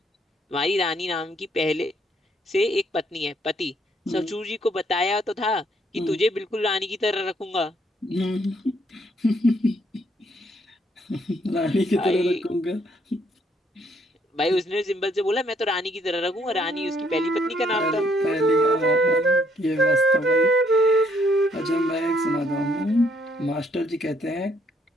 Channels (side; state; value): both; normal; correlation 0.68